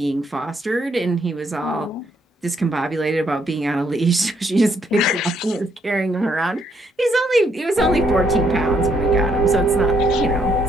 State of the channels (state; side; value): normal; both; correlation 0.72